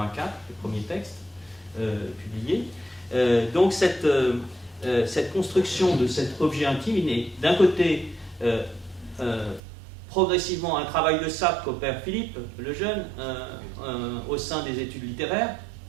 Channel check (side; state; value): left; drops out; at 9.6 s